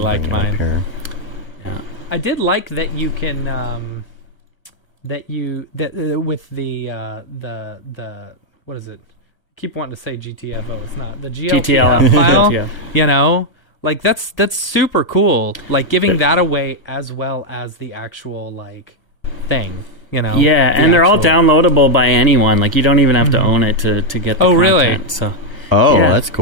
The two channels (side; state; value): right; late; 1.0 ms